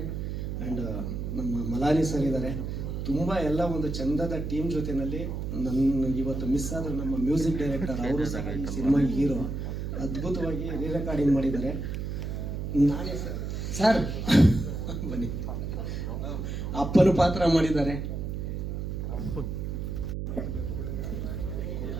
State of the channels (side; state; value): right; noise; hum, 4 dB below the sound